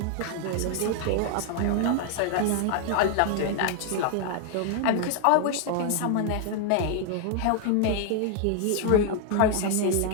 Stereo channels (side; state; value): both; different; correlation 0.00